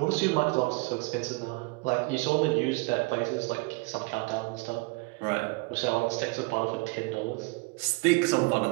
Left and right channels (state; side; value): quieter; left; 26.7 dB